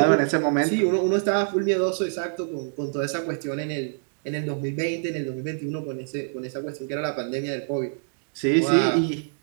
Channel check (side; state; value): left; silent; digital silence